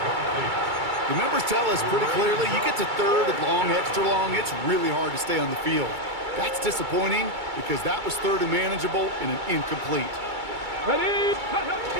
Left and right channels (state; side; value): late; left; 2.3 ms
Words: The numbers tell us pretty clearly, you get to 3rd and long, extra long, it's really hard to stay on the field. That's disappointing because that was 3rd and manageable and an incomplete. Ready.